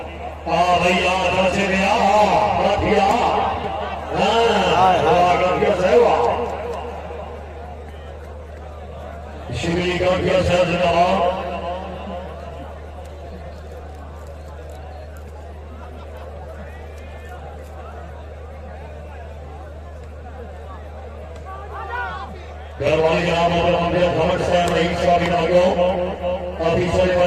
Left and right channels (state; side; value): identical; both; correlation 1.00